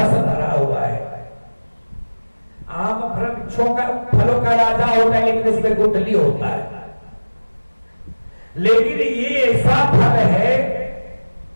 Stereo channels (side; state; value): both; inverted; correlation -1.00